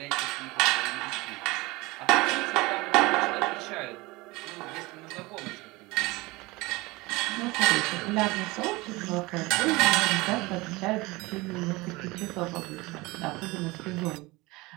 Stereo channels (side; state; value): left; quieter; 22.5 dB